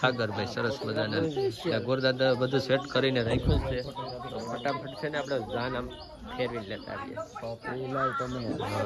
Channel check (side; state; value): both; identical; correlation 1.00